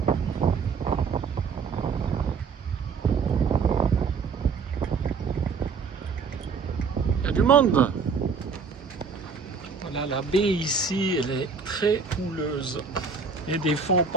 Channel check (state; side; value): quieter; left; 5.3 dB